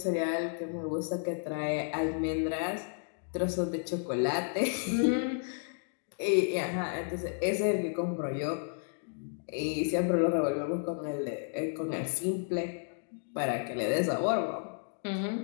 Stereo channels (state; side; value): silent; right; digital silence